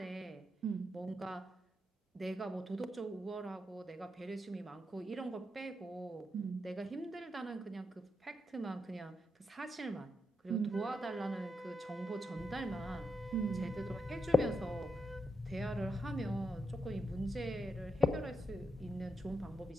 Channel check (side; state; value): both; normal; correlation 0.84